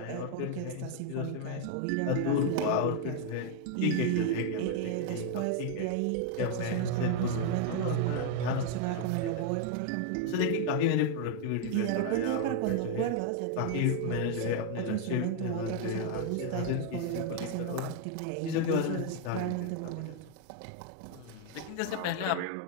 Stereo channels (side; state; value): both; different; correlation 0.00